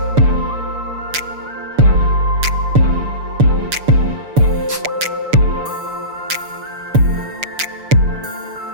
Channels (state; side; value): late; left; 6.9 ms